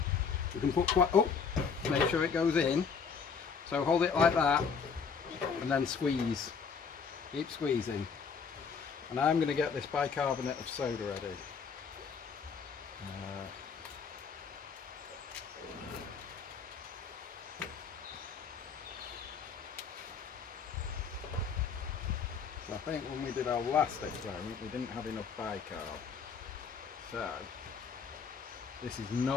We can put quite, oh, make sure it goes in. So hold it like that and then squeeze. Keep squeezing. And I'm going to get this bicarbonate of soda ready. So I think when we did our last experiment we didn't have enough bicarb. So this is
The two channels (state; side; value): quieter; right; 5.9 dB